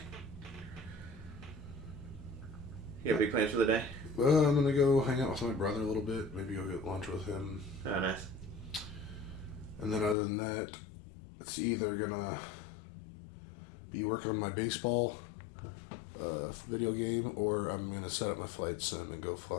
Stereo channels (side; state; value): right; drops out; at 10.2 s